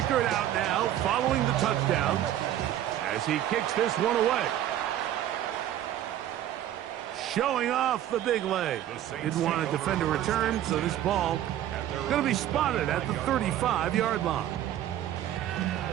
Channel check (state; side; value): quieter; left; 12.0 dB